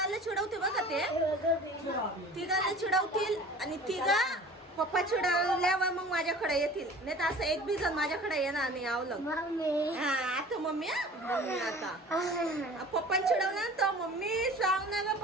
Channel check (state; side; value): normal; both; correlation 0.44